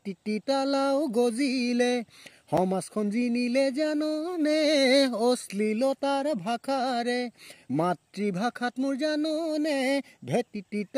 তালাও গজিলে। সমাজখন জিনিলে জাননে অশ্লীলতাৰ ভাষাৰে, মাতৃভাষাত মোৰ জাননে ভেটিটি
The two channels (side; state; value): both; identical; correlation 1.00